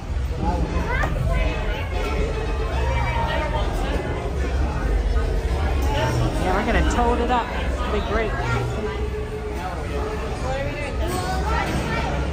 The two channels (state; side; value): identical; both; correlation 1.00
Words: Yeah, we're gonna toad it up. It'll be great.